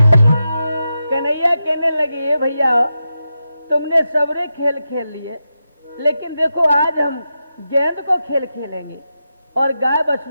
तुमने सबरे खेल खेल लिए, लेकिन देखो आज हम गेंद को खेल खेलेंगे और गाय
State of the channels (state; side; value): inverted; both; correlation -0.89